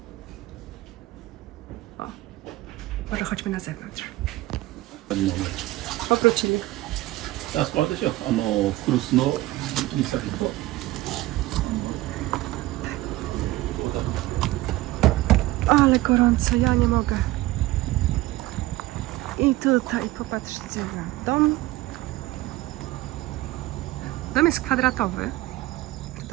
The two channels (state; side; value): quieter; left; 17.8 dB